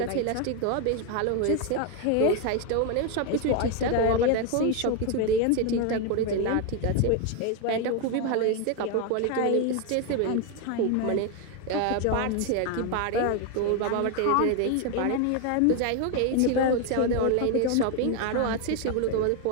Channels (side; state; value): both; different; correlation 0.01